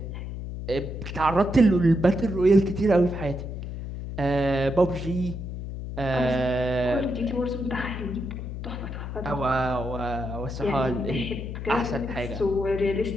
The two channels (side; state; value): left; noise; hum, 7 dB below the sound